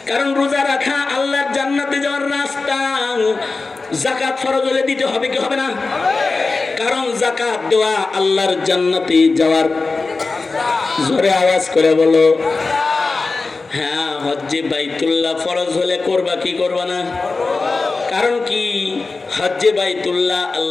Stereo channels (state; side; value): quieter; right; 3.9 dB